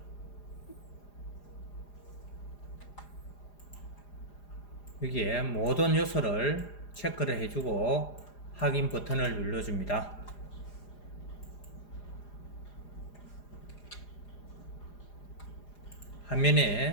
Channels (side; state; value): right; late; 4.9 ms